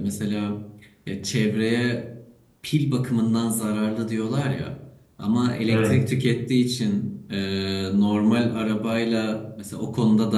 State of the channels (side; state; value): both; identical; correlation 1.00